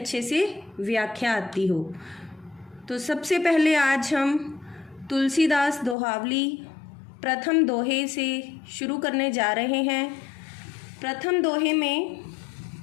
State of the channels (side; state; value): right; drops out; at 6.0 s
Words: से व्याख्या आती हो। तो सबसे पहले आज हम तुलसीदास दोहावली प्रथम दोहे से शुरू करने जा रहे हैं। प्रथम दोहे में